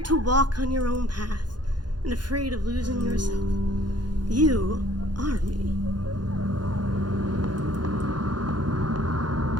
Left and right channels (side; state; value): left; late; 0.70 ms